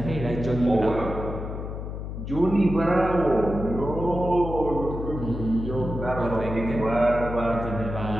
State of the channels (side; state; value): left; noise; hum, 7 dB below the sound